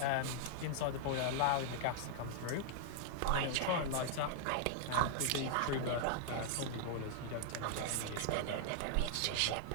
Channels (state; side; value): different; both; correlation -0.01